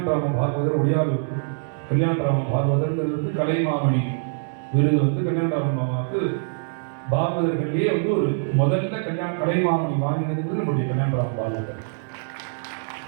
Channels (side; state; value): left; silent; 63 dB below the other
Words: பாகவதர், ஒடியாலு கல்யாணராம பாகவதர்ங்கிறது கலைமாமணி விருது வந்து கல்யாணராம மாமாவுக்கு பாகவதர்கள்லேயே வந்து ஒரு முதல்ல கலைமாமணி வாங்கினது நம்முடைய கல்யாணராம பாகவதர்.